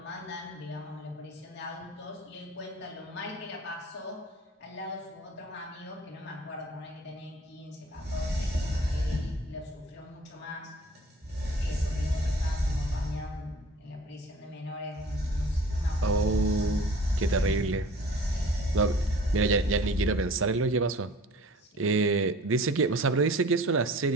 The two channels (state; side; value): normal; both; correlation 0.46